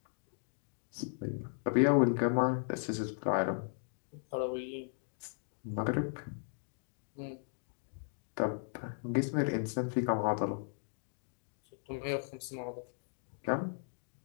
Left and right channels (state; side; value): silent; right; digital silence